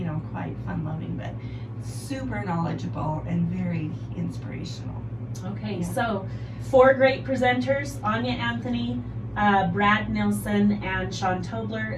quite fun-loving, but super knowledgeable and very inspirational. Okay, Yeah. so 4 great presenters: Anya Anthony, Brad Nilsson, and Sean Tobler,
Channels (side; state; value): both; identical; correlation 1.00